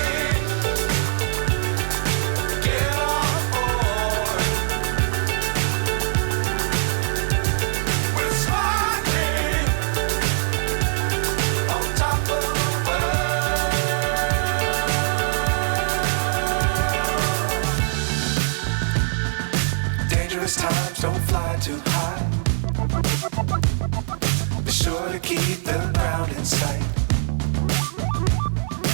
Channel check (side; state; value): left; silent; digital silence